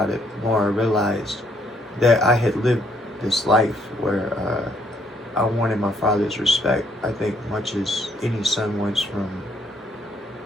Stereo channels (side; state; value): both; normal; correlation 0.69